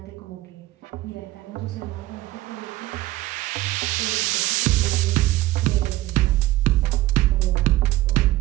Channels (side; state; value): left; quieter; 16.9 dB